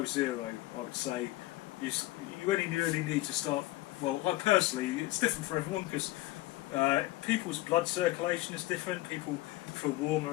zero, I would say. You only really need to start. Well, I personally, it's different for everyone because people's blood circulation is different. People feel warmer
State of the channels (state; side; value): quieter; right; 18.1 dB